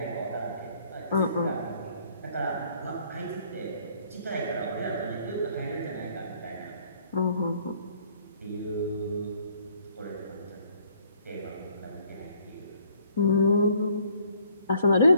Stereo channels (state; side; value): inverted; both; correlation -0.63